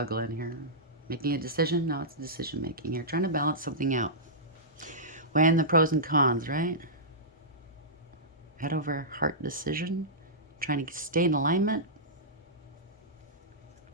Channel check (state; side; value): normal; both; correlation -0.15